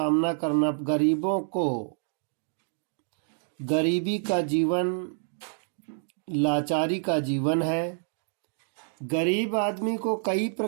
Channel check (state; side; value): silent; left; digital silence